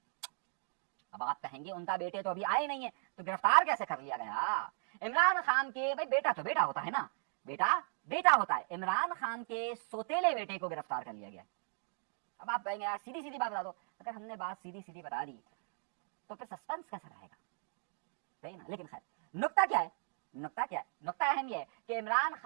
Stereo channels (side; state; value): left; silent; digital silence